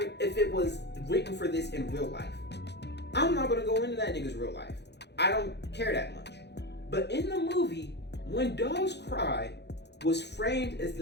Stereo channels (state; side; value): late; right; 0.50 ms